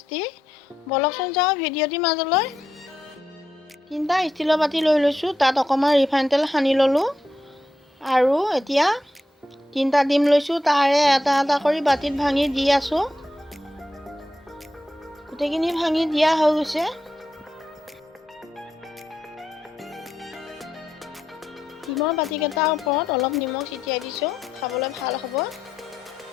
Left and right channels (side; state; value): both; normal; correlation 0.84